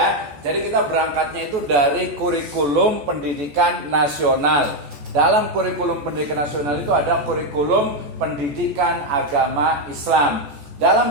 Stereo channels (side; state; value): left; late; 14 ms